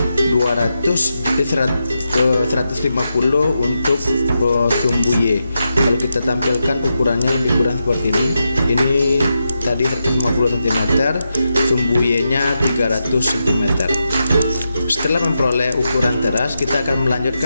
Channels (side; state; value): both; inverted; correlation -0.87